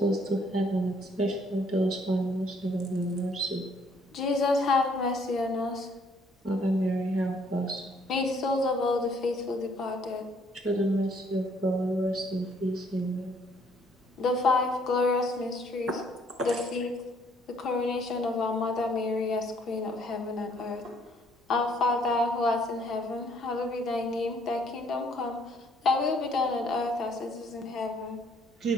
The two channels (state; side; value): normal; both; correlation 0.65